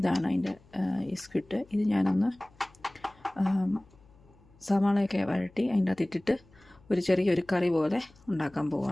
അതിൻ്റെ ഈ സ്ക്വിഡ്. ഇത് ഞാനൊന്ന് സവാളയൊക്കെ വഴട്ടി അതിൻ്റെ അകത്ത് ഇട്ടിട്ട് ഒരു ചെറിയൊരു കറി പോലെ ഉണ്ടാക്കാൻ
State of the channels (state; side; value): noise; left; hum, 28 dB below the sound